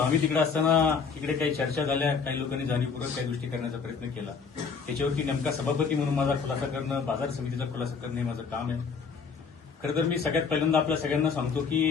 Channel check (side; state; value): right; quieter; 5.6 dB